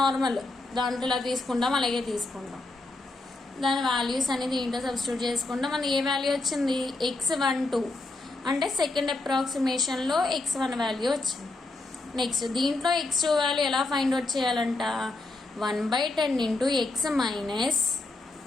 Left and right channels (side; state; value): right; quieter; 3.1 dB